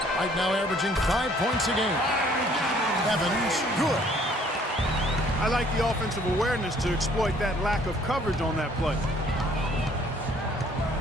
Right now averaging 5 points a game. Evans, good. I like the offensive awareness to exploit that lack of coverage on that play.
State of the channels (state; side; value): normal; both; correlation 0.59